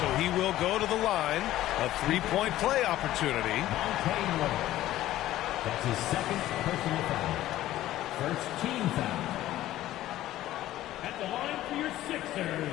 so he will go to the line. A 3-point play opportunity. That's his second personal foul. First team foul. At the line for your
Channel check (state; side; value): quieter; right; 14.5 dB